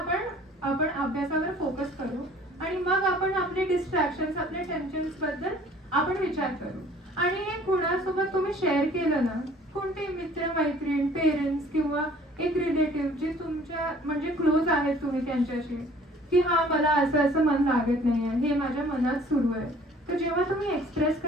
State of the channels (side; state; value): both; normal; correlation 0.53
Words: अभ्यासावर फोकस करू आणि मग आपण आपले डिस्ट्रॅक्शन, आपले टेन्शन्स बद्दल आपण विचार करू. आणि हे कुणासोबत तुम्ही शेअर केलं ना, कोणते मित्र मैत्रीण, पेरेंट्स किंवा एक रिलेटिव्ह जे तुमच्या म्हणजे क्लोज आहेत तुम्ही त्यांच्याशी, की हा मला असं मन लागत नाहीये, हे माझ्या मनात सुरू आहे. तर जेव्हा तुम्ही एक्सप्रेस